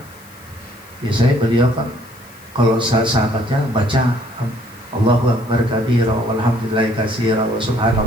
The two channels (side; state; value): left; noise; hiss, 25 dB below the sound